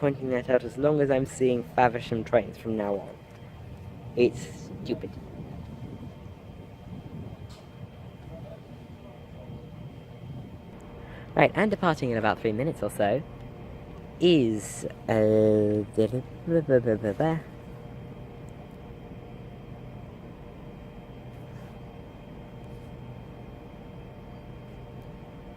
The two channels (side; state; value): both; identical; correlation 1.00